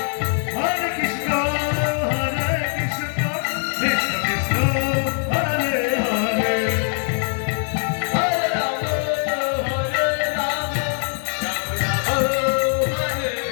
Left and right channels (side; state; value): right; silent; 58 dB below the other